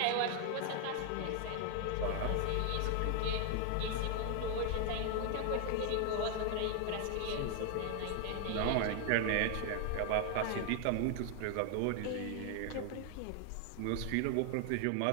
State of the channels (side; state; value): both; different; correlation 0.00